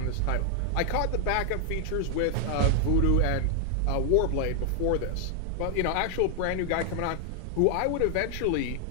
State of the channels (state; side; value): different; both; correlation 0.00